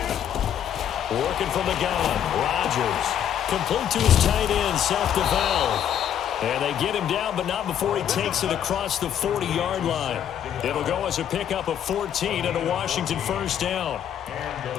Working from the gun, Rodgers. Complete to his tight end, Seth DeVal. And they get him down, but not before he takes it across the 40-yard line. It'll go as a pickup of 14 and a Washington first down.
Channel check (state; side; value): quieter; right; 9.7 dB